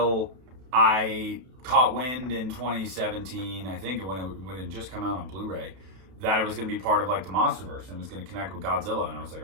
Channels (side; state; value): left; late; 32 ms